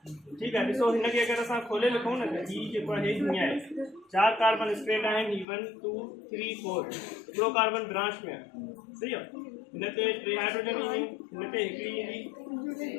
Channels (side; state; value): right; drops out; at 5.5 s